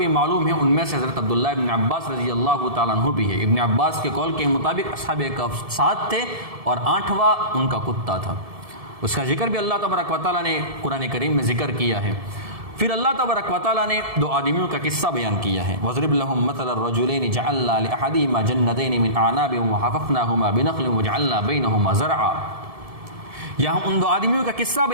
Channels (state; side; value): late; left; 1.7 ms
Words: معلوم ہے۔ ان میں سے حضرت عبداللہ ابن عباس رضی اللہ تعالیٰ عنہ بھی ہے۔ ابن عباس کے قول کے مطابق اصحاب کہف 7 تھے اور 8واں ان کا کتا تھا۔ اس کا ذکر بھی اللہ تبارک و تعالیٰ نے قرآن کریم میں ذکر کیا ہے۔ پھر اللہ تبارک و تعالیٰ نے 2 آدمیوں کا قصہ بیان کیا ہے۔ وَضْرِبْ لَهُم مَثَلَ الرَّجُلَيْنِ جَعَلْنَا لِأَحَدِهِمَا جَنَّتَيْنِ مِنْ أَعْنَابٍ وَحَفَفْنَاهُمَا بِنَخْلٍ وَجَعَلْنَا بَيْنَهُمَا زَرْعًا۔ یہاں ان 2 آدمیوں کا قصہ